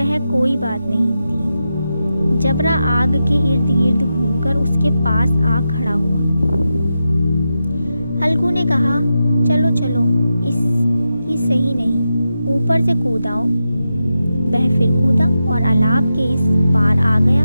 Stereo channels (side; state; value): both; inverted; correlation -0.89